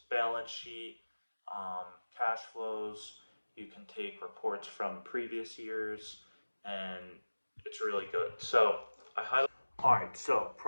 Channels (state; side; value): inverted; both; correlation -1.00